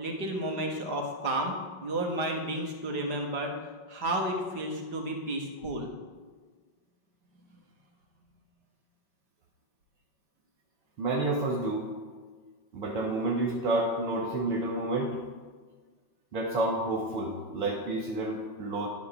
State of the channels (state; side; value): late; right; 5.4 ms